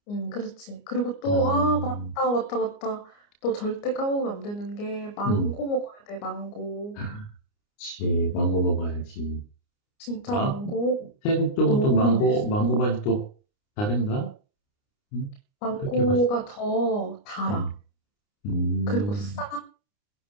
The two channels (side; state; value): right; late; 29 ms